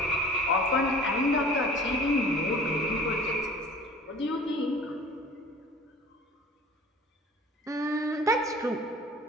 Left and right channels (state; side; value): normal; both; correlation 0.45